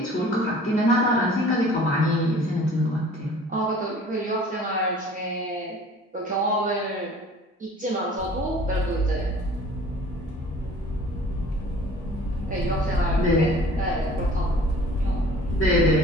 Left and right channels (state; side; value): normal; both; correlation 0.48